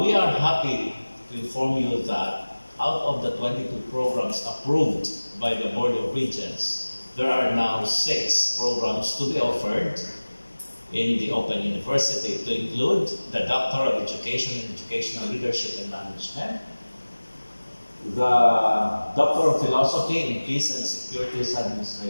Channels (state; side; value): inverted; both; correlation -1.00